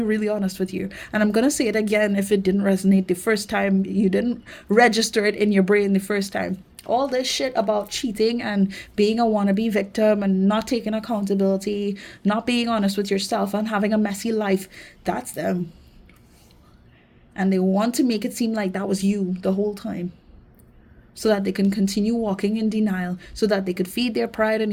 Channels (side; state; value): both; identical; correlation 1.00